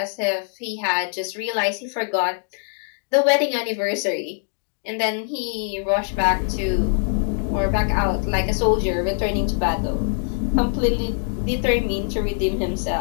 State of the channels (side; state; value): right; silent; digital silence